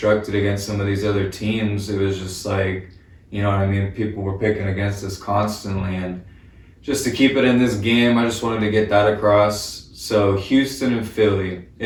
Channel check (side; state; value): both; identical; correlation 1.00